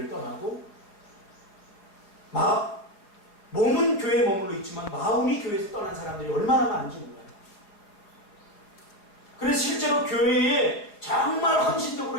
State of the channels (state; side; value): late; right; 4.9 ms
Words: 떠나고 몸은 교회에 머물러 있지만 마음이 교회에서 떠난 사람들이 얼마나 많은지 몰라요. 그래서 실제로 교회에 정말 헌신적으로